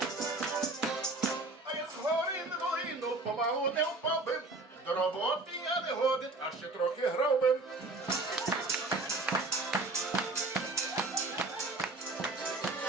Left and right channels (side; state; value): left; quieter; 3.1 dB